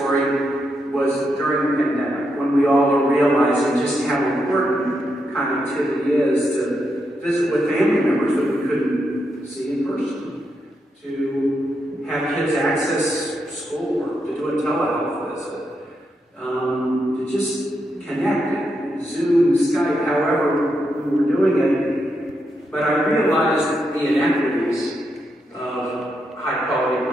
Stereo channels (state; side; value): normal; both; correlation 0.82